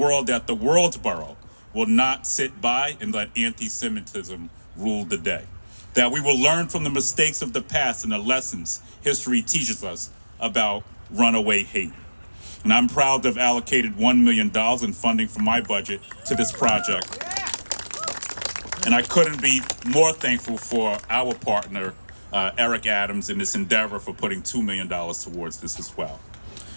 that the world's borough will not sit by and let anti-Semitism rule the day. That we will learn from the mistakes of the past and the lessons history teaches us about runaway hate. And I'm proud to have allocated $1 million in funding from my budget to this project. And I couldn't be more thankful for our partner, Eric Adams, in this endeavor for putting $2 million towards this as well.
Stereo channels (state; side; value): inverted; both; correlation -1.00